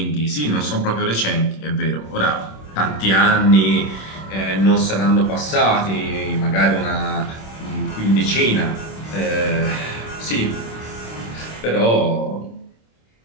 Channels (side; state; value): right; late; 26 ms